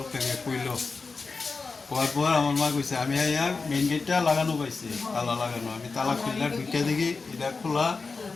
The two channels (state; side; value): quieter; right; 4.3 dB